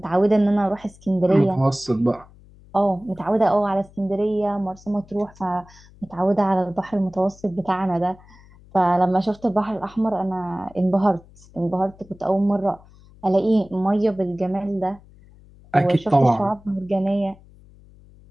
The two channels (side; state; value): left; noise; hum, 24 dB below the sound